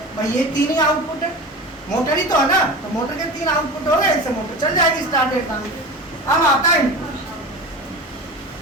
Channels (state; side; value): normal; both; correlation 0.31